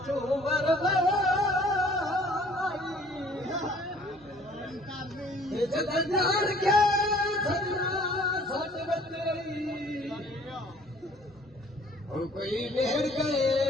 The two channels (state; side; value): normal; both; correlation 0.55